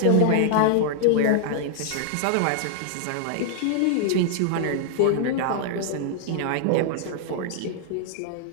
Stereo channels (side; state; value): both; different; correlation 0.00